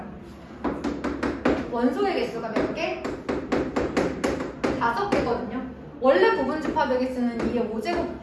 원소의 개수가 몇 개? 5개거든요. 원래 부분 집합의 개수는 2의 5제곱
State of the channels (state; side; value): identical; both; correlation 1.00